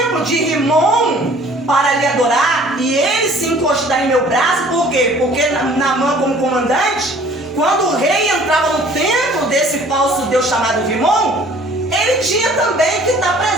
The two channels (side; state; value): both; normal; correlation 0.53